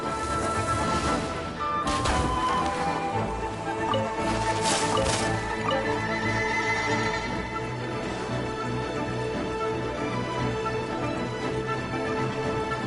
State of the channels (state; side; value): identical; both; correlation 1.00